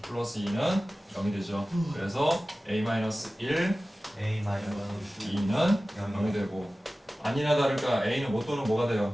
플러스 2는 0이 되죠. 그래서 a-1 2는 0이 되고 아니나 다를까 a는 뭐 또는 뭐가 돼요?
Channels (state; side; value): normal; both; correlation 0.96